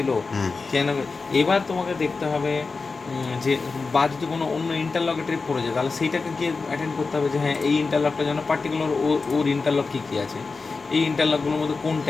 হুম কেন। এবার তোমাকে দেখতে হবে যে, বা যদি কোনো অন্য ইন্টারলকে ট্রিপ করে যায়, তাহলে সেইটাকে গিয়ে অ্যাটেন্ড করতে হবে, যে হ্যাঁ এই ইন্টারলকটা যেন পার্টিকুলার ওর ইন্টারলক কী কী আছে, এই ইন্টারলকগুলোর মধ্যে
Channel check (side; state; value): right; quieter; 4.3 dB